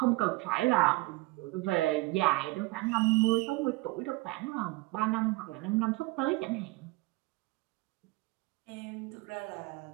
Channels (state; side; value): quieter; left; 22.2 dB